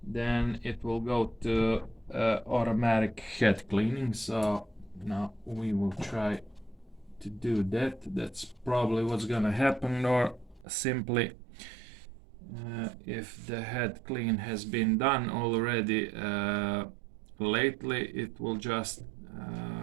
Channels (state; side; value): drops out; left; at 10.7 s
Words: then it will go to automatic head cleaning. So now we will try to do that. That's probably what's gonna happen. Or simply if the head clean has been done already lately, it will just